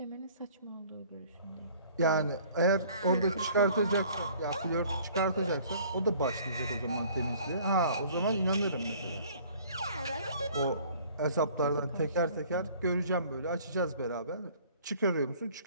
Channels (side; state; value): both; inverted; correlation -0.53